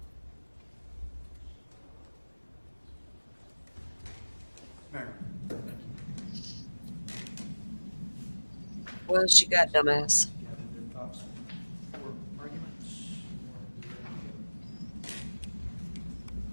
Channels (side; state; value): both; inverted; correlation -1.00